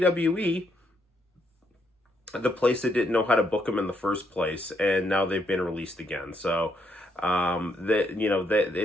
the place that didn't know how to book them in the first place. And now they've been released again. So,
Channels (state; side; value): normal; both; correlation 0.75